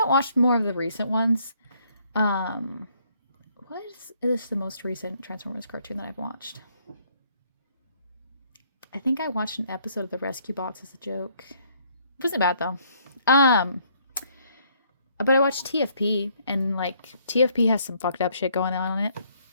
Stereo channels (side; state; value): both; inverted; correlation -0.67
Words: watched more of the recent ones. What is the most recent Transformers cartoon that I've watched? I think I watched an episode of the Rescue Bots as a joke. It wasn't bad, though. But I watched TFP, and, like, TFP has some fucked up shit going on in it.